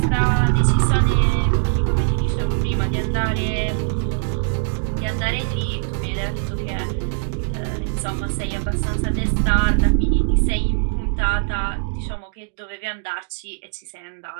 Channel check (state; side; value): silent; left; digital silence